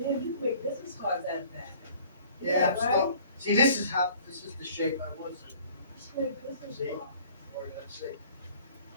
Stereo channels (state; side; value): inverted; both; correlation -0.53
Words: Man, you make business cards out of that. Yeah, I'm right? still. See, this is the shape I was in. You make business See? cards. Or let's say,